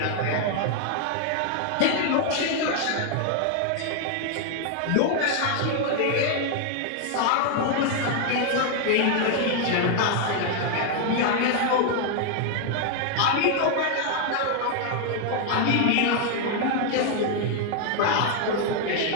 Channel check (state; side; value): different; both; correlation 0.00